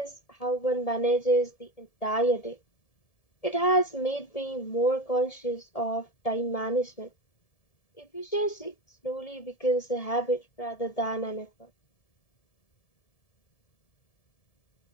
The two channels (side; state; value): right; late; 1.7 ms